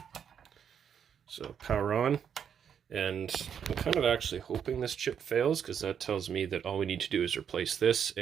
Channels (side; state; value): left; quieter; 8.0 dB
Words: So power on, and I'm kind of actually hoping this chip fails because that tells me that all we need to do is replace this